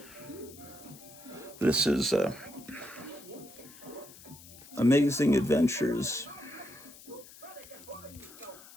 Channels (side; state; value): left; noise; hiss, 19 dB below the sound